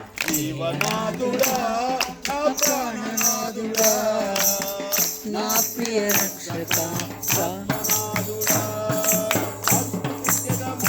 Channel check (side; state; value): both; identical; correlation 1.00